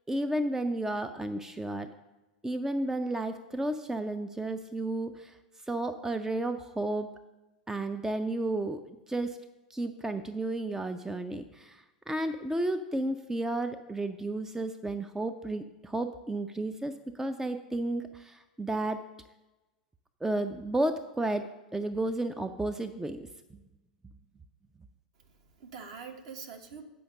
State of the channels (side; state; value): both; normal; correlation 0.82